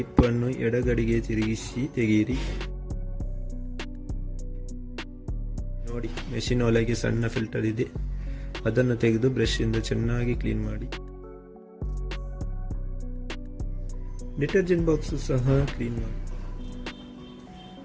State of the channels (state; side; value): identical; both; correlation 1.00